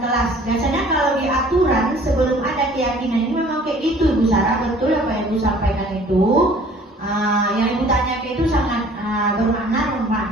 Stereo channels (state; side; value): normal; both; correlation 0.52